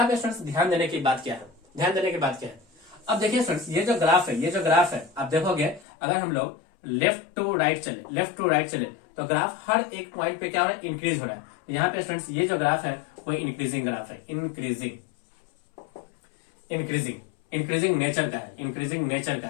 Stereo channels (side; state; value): right; drops out; at 5.9 s